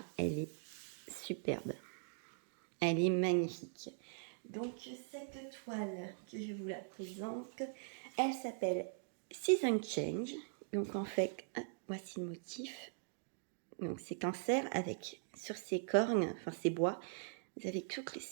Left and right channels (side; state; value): left; silent; digital silence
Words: elle est superbe. Elle est magnifique. Donc, cette toile que je vous la présente, elle s'appelle Season Change. Donc, en fait, voici le motif. Donc, c'est cancer avec, sur ses cornes, enfin ses bois, vous avez toutes les